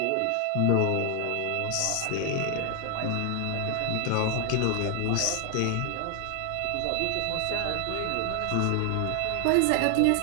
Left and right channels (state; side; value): different; both; correlation 0.00